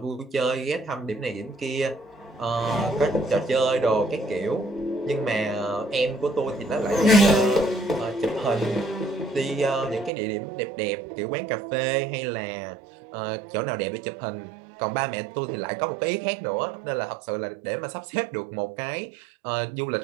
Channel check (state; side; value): drops out; left; at 10.1 s